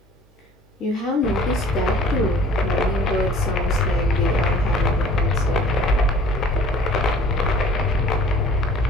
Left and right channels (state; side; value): normal; both; correlation 0.49